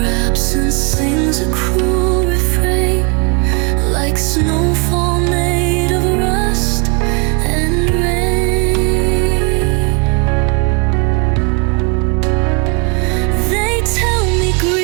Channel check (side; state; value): left; quieter; 33.1 dB